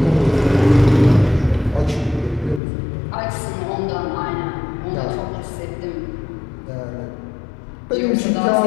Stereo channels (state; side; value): drops out; right; at 2.6 s